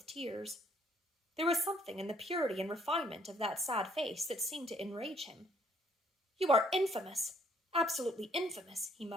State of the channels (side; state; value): both; normal; correlation 0.65